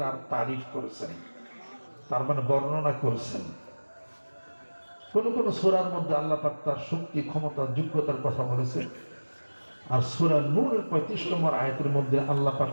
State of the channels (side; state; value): both; inverted; correlation -1.00